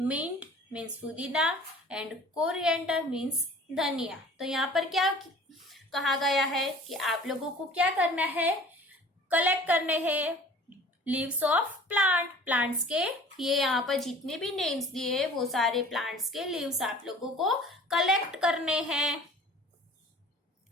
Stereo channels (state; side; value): normal; both; correlation 0.47